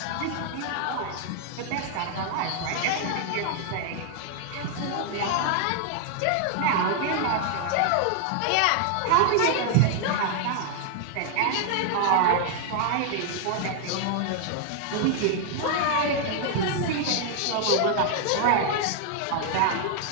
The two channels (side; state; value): both; different; correlation 0.00